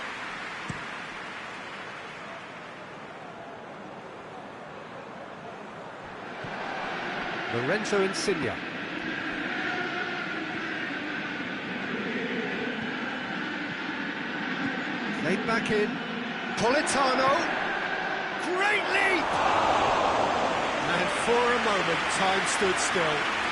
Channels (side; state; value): both; identical; correlation 1.00